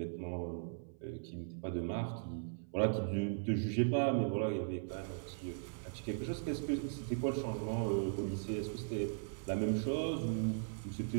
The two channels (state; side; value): silent; left; 52 dB below the other